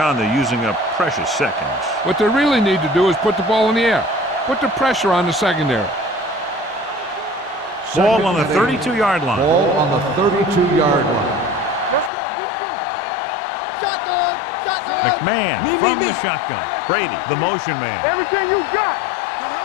they're using up precious seconds. What they really need to do is put the ball in the air. Put the pressure on the secondary. Ball on the 32-yard line. Ball on the 32-yard line. Let's go. Defense. Shotgun. McMahon from the shotgun. Brady, the motion man. Everything you got.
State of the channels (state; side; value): drops out; right; at 12.1 s